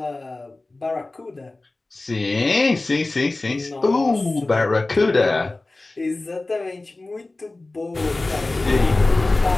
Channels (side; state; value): right; quieter; 3.1 dB